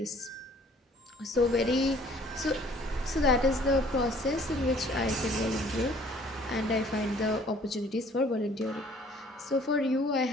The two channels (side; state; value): both; normal; correlation 0.56